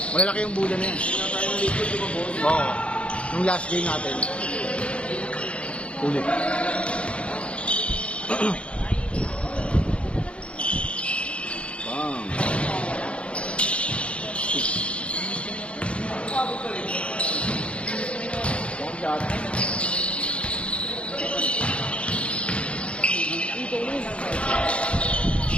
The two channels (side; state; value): right; late; 0.060 ms